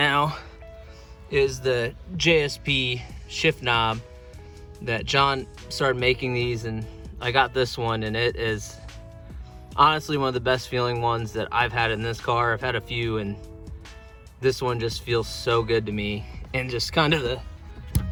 is the JSP shift knob that John started making these, and I got this one, and it is honestly one of the best feeling ones that I've had in this car. I've had a few, and this one just feels so good to me, and just kind of the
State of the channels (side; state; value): both; identical; correlation 1.00